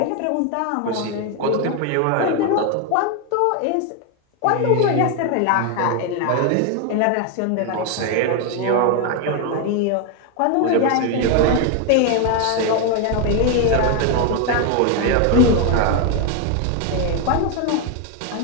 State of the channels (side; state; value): both; different; correlation 0.01